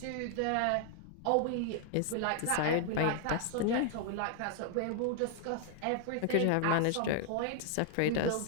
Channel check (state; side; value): different; both; correlation 0.00